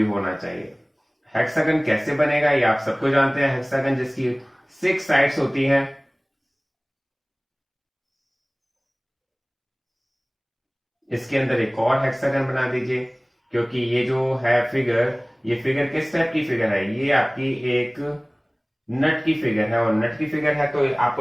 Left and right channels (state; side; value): identical; both; correlation 1.00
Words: होना चाहिए। हेक्सागन कैसे बनेगा ये आप सबको जानते हैं, हेक्सागन जिसकी 6 साइड्स होती हैं। इसके अंदर एक और हेक्सागन बना दीजिए, क्योंकि ये जो है फिगर, ये फिगर किस टाइप की फिगर है, ये आपकी एक नट की फिगर है, और नट की फिगर है तो आपको